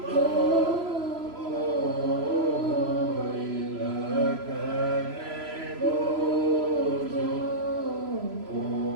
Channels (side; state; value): left; late; 3.0 ms